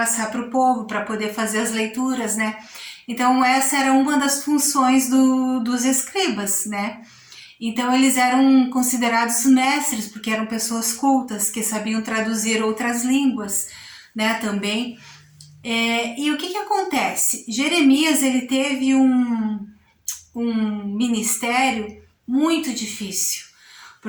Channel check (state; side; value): identical; both; correlation 1.00